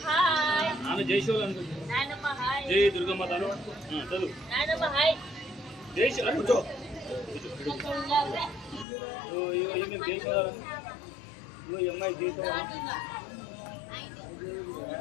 హాయ్ ఆమె జై శివ నాయనమ్మ హాయ్ జై దుర్గమ్మ తాను చదువు నాయనమ్మ హాయ్ జై శివ కూర్చో ఓ ఈమె జై శివ ఓ అమ్మాయి జై శివ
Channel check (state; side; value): drops out; right; at 8.8 s